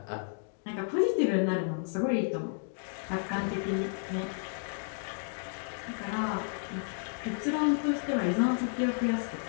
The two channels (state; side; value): silent; right; digital silence